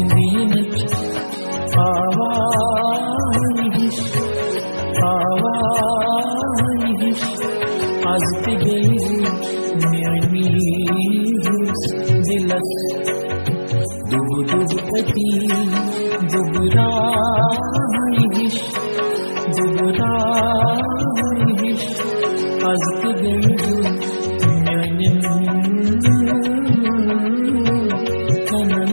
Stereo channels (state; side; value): inverted; both; correlation -1.00